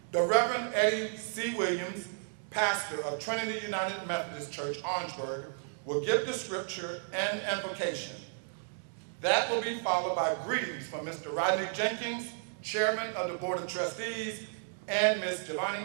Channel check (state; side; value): silent; left; digital silence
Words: The Reverend Eddie C. Williams, pastor of Trinity United Methodist Church, Orangeburg, will give the scripture and invocation. That will be followed by greetings from Mr. Rodney Jenkins, chairman of the Board of Trustees, and Ms.